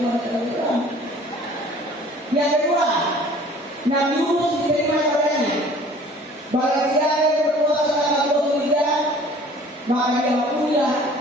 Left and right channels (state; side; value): normal; both; correlation 0.50